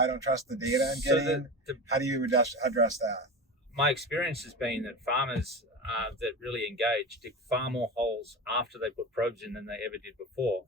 don't trust the data I'm getting. How do you address that? My experience has been that farmers that really engage dig far more holes after they put probes in than they ever did before.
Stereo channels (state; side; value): normal; both; correlation 0.26